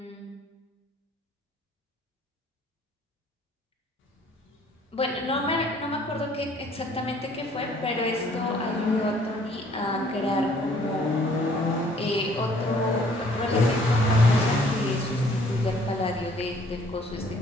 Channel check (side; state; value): both; normal; correlation 0.59